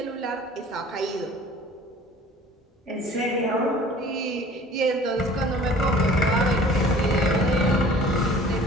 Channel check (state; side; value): normal; both; correlation 0.48